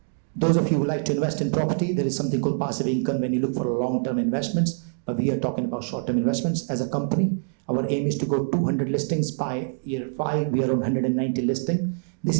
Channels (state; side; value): silent; left; digital silence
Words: those of you who like to invest in property, there is something called passive income when you look for long-term investments, but we are talking about short-term investments. As a company, our aim is to go 200 listings by year 5. We are on 190 listing. This